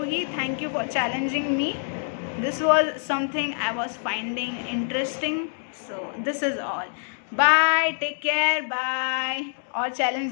Thank you for challenging me. This was something I was finding interesting. So this is all. Bye, take care, bye. और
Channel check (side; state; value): right; silent; digital silence